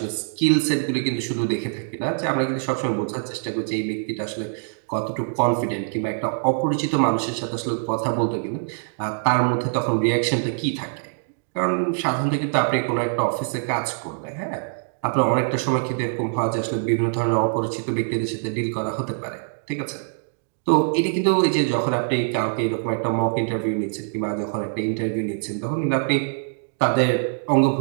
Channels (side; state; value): left; silent; digital silence